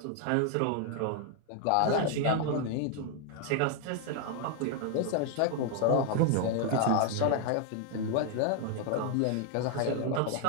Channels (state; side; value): different; both; correlation 0.00